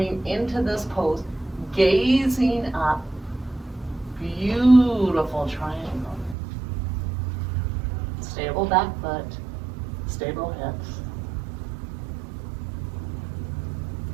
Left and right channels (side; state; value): left; drops out; at 6.4 s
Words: into this pose, gazing up. Beautiful triangle. Stable back foot, stable hips.